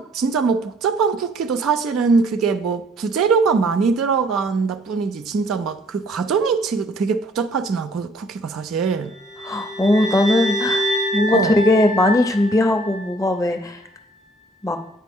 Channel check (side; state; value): both; normal; correlation 0.60